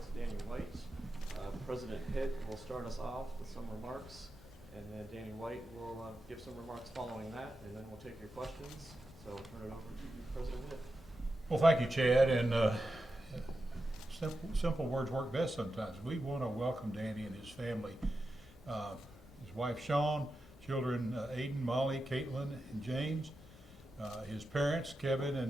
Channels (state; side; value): normal; both; correlation 0.90